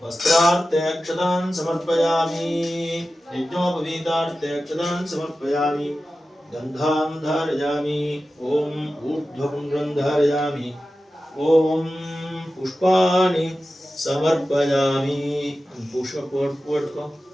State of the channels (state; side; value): normal; both; correlation 0.94